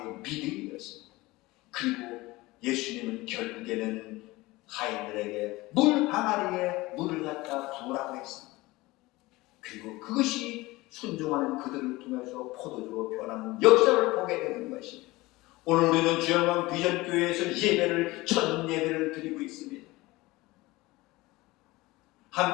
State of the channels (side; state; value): right; quieter; 20.5 dB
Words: 믿음이었습니다. 그리고 예수님은 결국에는 하인들에게 물 항아리에 물을 갖다 부으라고 했습니다. 그리고 그것이 순종하는 그들을 통해서 포도주로 변하는 역사를 보게 되는 것입니다. 오늘 우리는 주영광 비전교회에서 예배를 첫 예배를 드리고 있습니다.